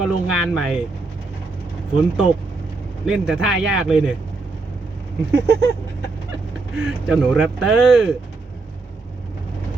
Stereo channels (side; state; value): left; quieter; 3.7 dB